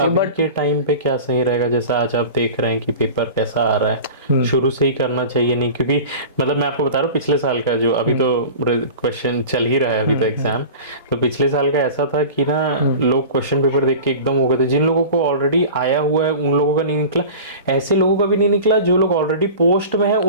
है। बट के टाइम पे क्या सही रहेगा, जैसा आज आप देख रहे हैं कि पेपर कैसा आ रहा है, शुरू से ही करना चाहिए नहीं? क्योंकि मतलब मैं आपको बता रहा हूँ पिछले साल का जो अभी तो क्वेश्चन चल ही रहा है अभी तो एग्जाम, तो पिछले साल का ऐसा था कि ना लोग क्वेश्चन पेपर देख के एकदम हो गए थे। जिन लोगों को ऑलरेडी आया हुआ है उन लोगों का नहीं निकला, ऐसे लोगों का भी नहीं निकला, जो लोग ऑलरेडी पोस्ट में है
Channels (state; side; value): inverted; both; correlation -0.36